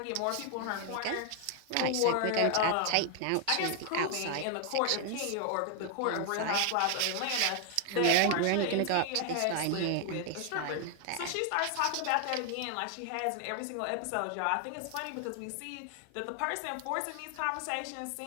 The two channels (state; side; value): different; both; correlation 0.00